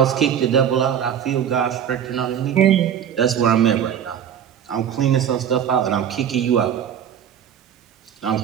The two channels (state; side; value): quieter; left; 9.1 dB